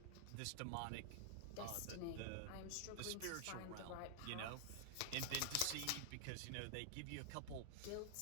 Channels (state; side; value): different; both; correlation 0.00